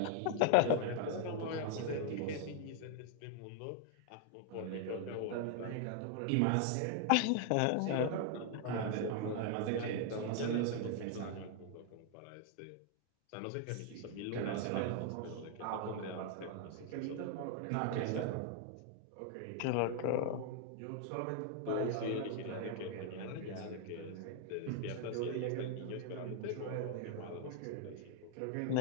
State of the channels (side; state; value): both; different; correlation 0.00